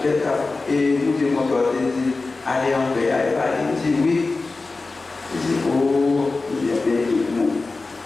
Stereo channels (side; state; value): right; quieter; 3.6 dB